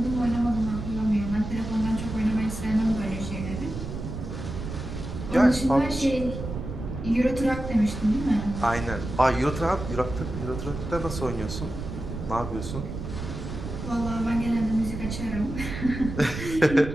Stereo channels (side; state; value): right; noise; rumble, 7 dB below the sound